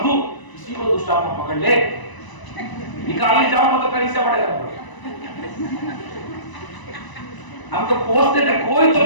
किसी को दुष्ट आत्मा पकड़ ले, निकालने जाओ तो कहीं से बढ़ेगा। हम तो पूछते थे कोई तो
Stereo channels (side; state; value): right; late; 1.0 ms